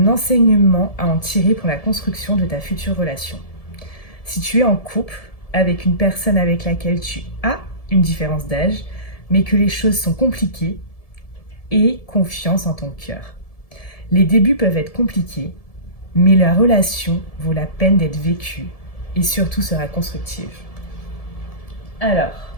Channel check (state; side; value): late; right; 1.7 ms